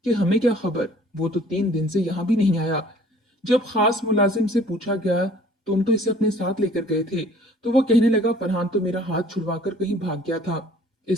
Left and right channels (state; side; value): normal; both; correlation 0.54